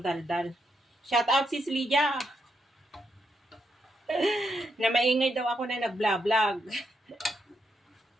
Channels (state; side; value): normal; both; correlation 0.80